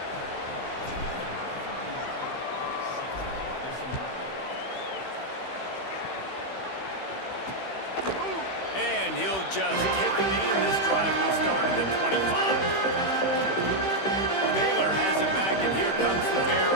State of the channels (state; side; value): late; right; 15 ms